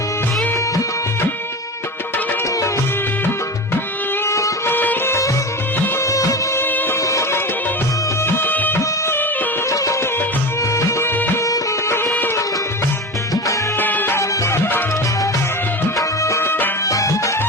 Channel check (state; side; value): normal; both; correlation 0.26